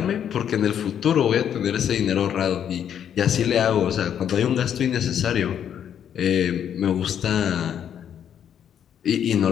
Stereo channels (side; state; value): right; quieter; 9.1 dB